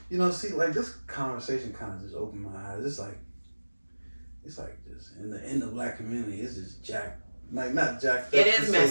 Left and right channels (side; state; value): both; inverted; correlation -1.00